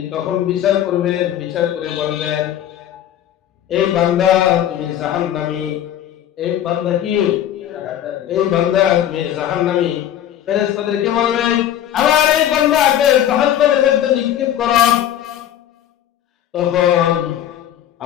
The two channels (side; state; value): right; quieter; 11.1 dB